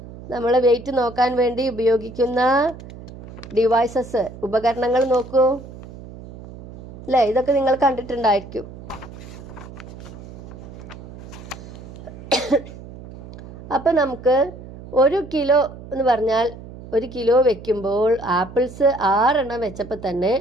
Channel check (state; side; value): noise; right; hum, 15 dB below the sound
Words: നമ്മൾ വെയിറ്റ് നോക്കാൻ വേണ്ടി ഉപയോഗിക്കുന്ന ഡിവൈസസ്, ഉപകരണങ്ങൾ നോക്കൂ അല്ലേ? ഇതൊക്കെ നിങ്ങൾ കണ്ടിട്ടുണ്ടായിരിക്കും. അപ്പം നമുക്ക് 1 കിലോ എന്ന് പറഞ്ഞാൽ 1 കിലോ വെക്കുമ്പോൾ ആപ്പിൾസ് 6 എണ്ണം വെച്ചപ്പോൾ തന്നെ